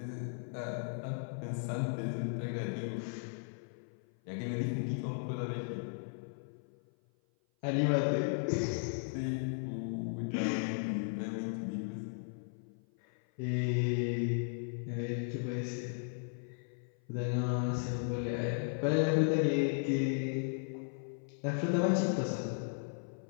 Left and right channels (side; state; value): right; silent; 54 dB below the other